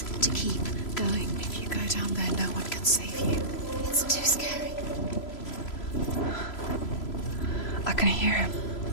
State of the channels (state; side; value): late; right; 3.0 ms